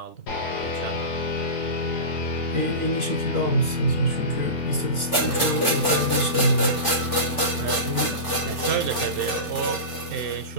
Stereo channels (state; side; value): late; right; 3.4 ms